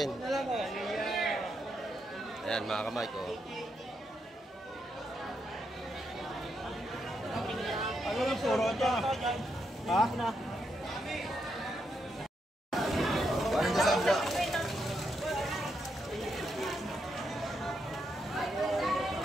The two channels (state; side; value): normal; both; correlation 0.81